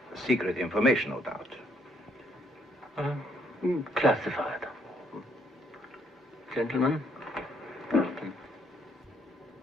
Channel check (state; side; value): normal; both; correlation 0.69